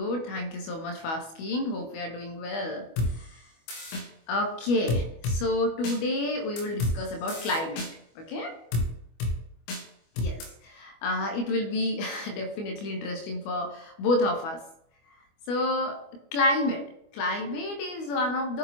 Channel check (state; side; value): late; right; 25 ms